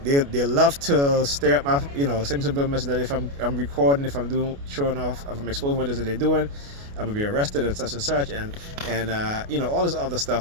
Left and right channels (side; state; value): left; late; 28 ms